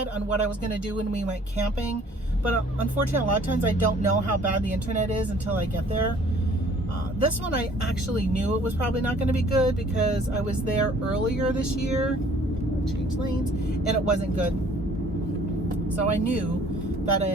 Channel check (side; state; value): both; normal; correlation 0.55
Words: on what I was going to do when we went camping. But unfortunately, a lot of times I don't know how bad the internet is until I get there. This one I actually knew it was probably not going to be good, because I was there earlier this year, change lanes, and it wasn't good. So I knew that